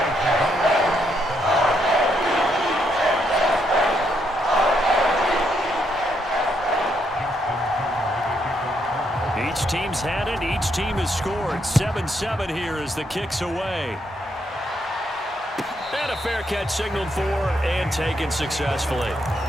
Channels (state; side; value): normal; both; correlation 0.76